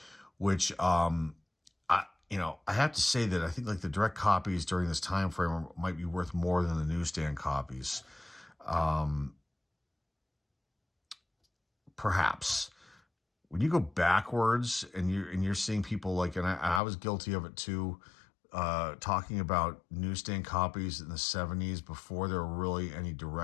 which I have to say that I think like the direct copies during this time frame might be worth more than the newsstand copies. Perhaps. When you go backwards and you're seeing people like, and I was guilty of it too, talking about newsstand copies in the 70s before there were really any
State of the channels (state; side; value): drops out; right; at 16.8 s